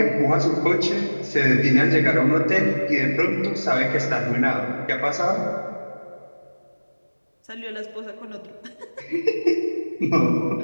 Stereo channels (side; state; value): both; inverted; correlation -1.00